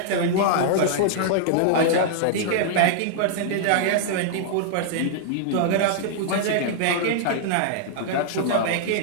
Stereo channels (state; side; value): different; both; correlation -0.01